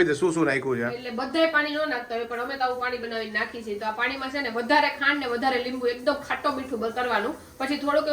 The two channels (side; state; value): both; identical; correlation 1.00